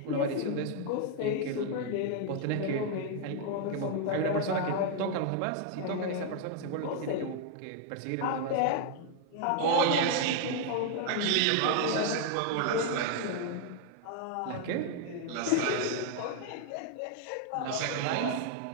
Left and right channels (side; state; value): both; different; correlation 0.00